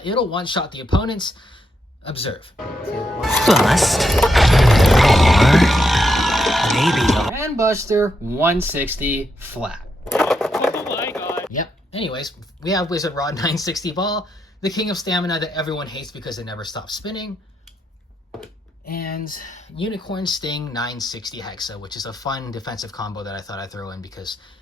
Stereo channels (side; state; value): both; normal; correlation 0.81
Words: it'll one-shot the opponents. Observe. Bust. Or maybe Dran Buster 160 Flat. Oh my god. Yep. Anyways, we have Wizard Rod 960 Ball, the king of stamina that everyone hates because it never stops spinning. And Unicorn Sting 960 Hexa, which is a fun defensive combo that I thought I'd throw in because